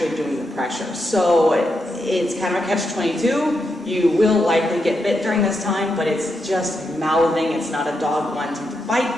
doing the pressure. So it's kind of a catch-22. You will likely get bit during this time, but it's just mouthing. It's not a dog wanting to bite,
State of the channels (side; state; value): both; normal; correlation 0.84